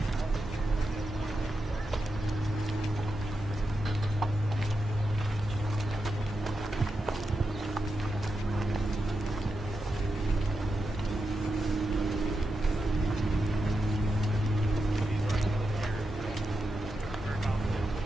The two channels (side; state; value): both; normal; correlation 0.88